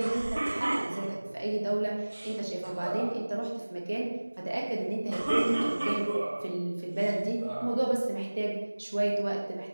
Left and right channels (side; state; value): both; inverted; correlation -1.00